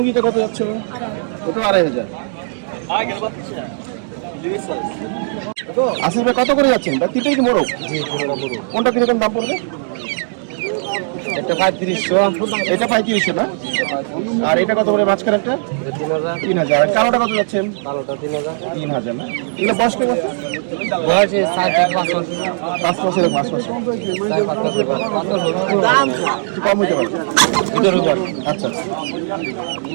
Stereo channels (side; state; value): left; silent; digital silence